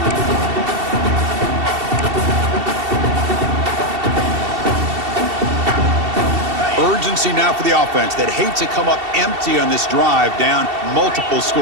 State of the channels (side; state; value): left; late; 2.7 ms